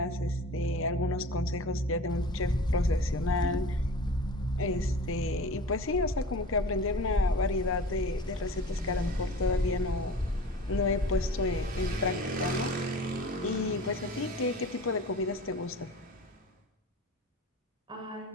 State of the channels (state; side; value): normal; both; correlation 0.38